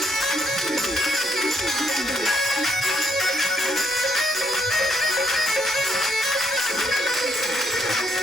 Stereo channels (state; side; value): noise; right; rumble, 29 dB below the sound